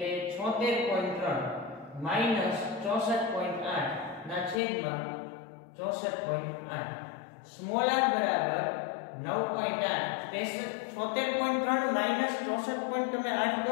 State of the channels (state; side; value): drops out; right; at 4.6 s